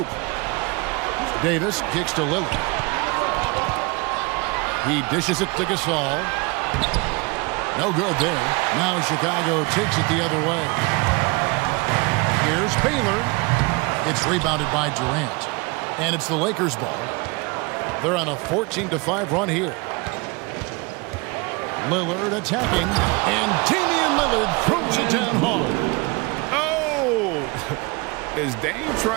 Davis kicks to Lillard. He dishes it to Gasol. No good there. Now Chicago takes it the other way. Here's Baylor. It's rebounded by Durant. And it's the Lakers' ball. They're on a 14-5 run here. Lillard attacking. And Damian Lillard throws it down hard. Oh! Is Dame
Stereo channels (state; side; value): quieter; left; 27.2 dB